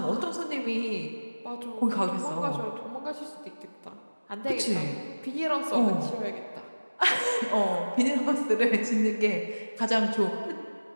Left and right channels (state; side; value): inverted; both; correlation -1.00